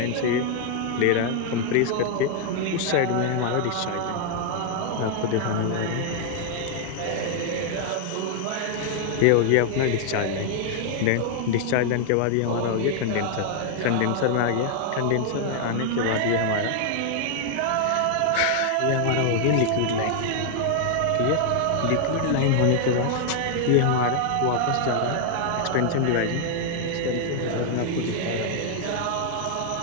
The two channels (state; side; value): different; both; correlation 0.00